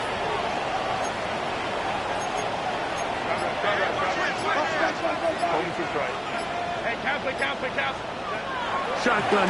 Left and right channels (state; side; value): identical; both; correlation 1.00